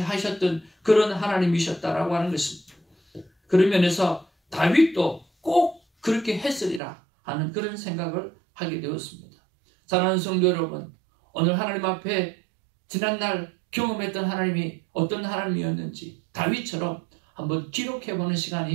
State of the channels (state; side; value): drops out; left; at 6.8 s